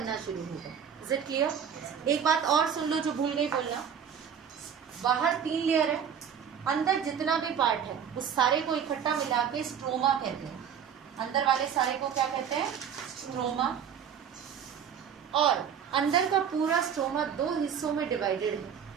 शुरू होगा। Is it clear? एक बात और सुन लो जो भूल गई बोलना, बाहर 3 लेयर है, अंदर जितना भी पार्ट है उस सारे को इकट्ठा मिला के स्ट्रोमा कहते हैं। अंदर वाले सारे को क्या कहते हैं? स्ट्रोमा। और अंदर का पूरा स्ट्रोमा 2 हिस्सों में डिवाइडेड है।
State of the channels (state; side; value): quieter; left; 8.0 dB